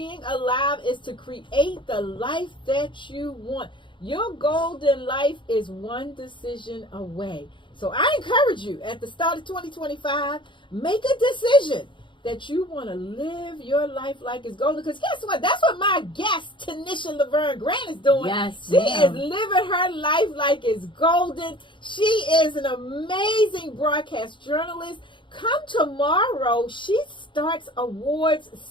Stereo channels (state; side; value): late; right; 0.23 ms